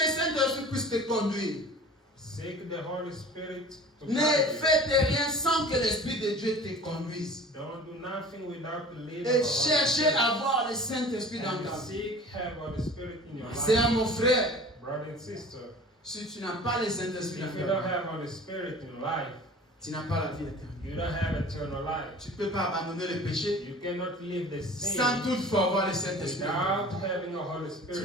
Saint-Esprit puisse te conduire. Seek the Holy Spirit to Ne guide you. faites rien sans que l'Esprit de Dieu te conduise. Don't do nothing without the leading Et of the cherchez Holy à voir le Saint-Esprit Spirit. dans And ta vie. seek have Holy Spirit in your C'est à life. mon frère. Brother and sister, Si tu n'as pas le Saint-Esprit if dans you ta don't vie, have Holy Spirit in life, tu n'as pas la vie éternelle. you don't have eternal life. Tu ne peux pas abandonner le péché You cannot live the sin sans toutefois avoir le Saint-Esprit. without having a Holy Tu ne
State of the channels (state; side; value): normal; both; correlation 0.42